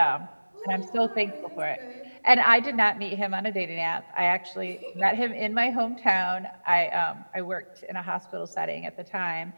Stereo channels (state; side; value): inverted; both; correlation -1.00